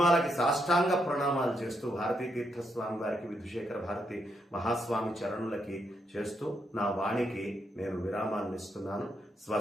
సాష్టాంగ ప్రణామాలు చేస్తూ భారతీ తీర్థస్వామి వారికి, విధుశేఖర భారతి మహాస్వామి చరణులకి చేస్తూ నా వాణికి నేను విరామాన్ని ఇస్తున్నాను.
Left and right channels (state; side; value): normal; both; correlation 0.79